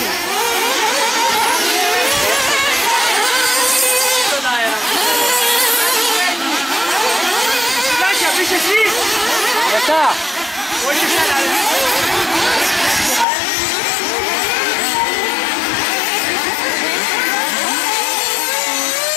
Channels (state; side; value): drops out; right; at 13.2 s